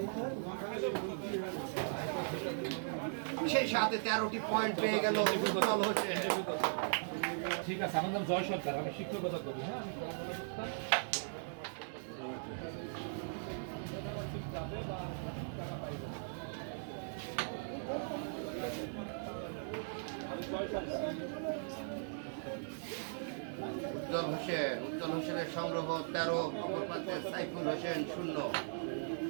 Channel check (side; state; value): left; silent; digital silence